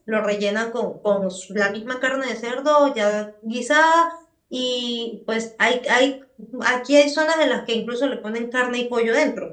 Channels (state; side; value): identical; both; correlation 1.00